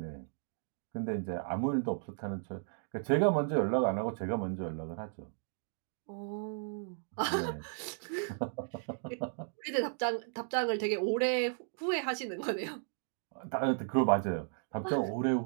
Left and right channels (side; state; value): left; silent; 54 dB below the other